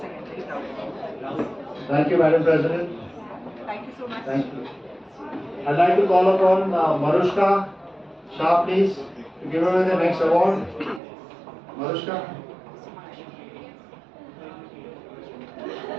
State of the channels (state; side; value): drops out; left; at 11.0 s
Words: Thank you, Madam President. Thank you so much. Thank you. I'd like to call upon Marushka Shah, please, to give away the next award. Marushka.